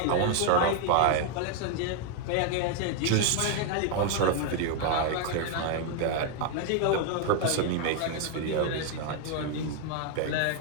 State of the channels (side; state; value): both; different; correlation 0.00